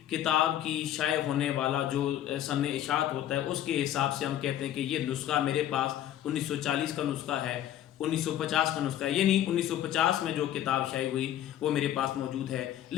کتاب کی شائع ہونے والا جو سن اشاعت ہوتا ہے اس کے حساب سے ہم کہتے ہیں کہ یہ نسخہ میرے پاس 1940 کا نسخہ ہے، 1950 کا نسخہ ہے، یعنی 1950 میں جو کتاب شائع ہوئی وہ میرے پاس موجود ہے۔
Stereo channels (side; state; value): right; quieter; 11.7 dB